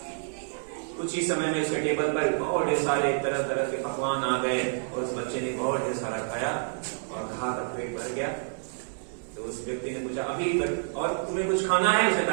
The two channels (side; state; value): left; silent; digital silence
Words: कुछ ही समय में उसके टेबल पर बहुत ढेर सारे तरह तरह के पकवान आ गए और उस बच्चे ने बहुत ढेर सारा खाया और खा कर पेट भर गया। तो उस व्यक्ति ने पूछा, अभी और तुम्हें कुछ खाना है? उसने